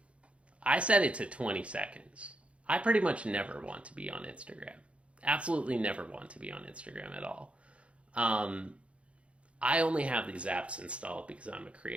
I set it to 20 seconds. I pretty much never want to be on Instagram. Absolutely never want to be on Instagram at all. I only have these apps installed because I'm a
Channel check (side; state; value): left; late; 0.061 ms